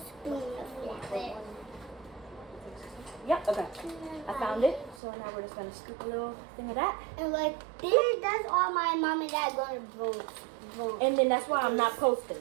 of flour. yep, okay. I found it. So now we're just gonna scoop a little thing of that. And like this, that's all my mom and dad gonna vote. And then that's why I'm not posting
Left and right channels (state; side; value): drops out; left; at 5.0 s